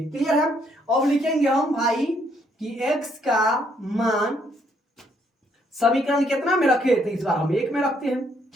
क्लियर है? अब लिखेंगे हम भाई कि x का मान समीकरण कितना में रखे? तो इस बार हम 1 में रखते हैं,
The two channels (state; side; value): normal; both; correlation 0.70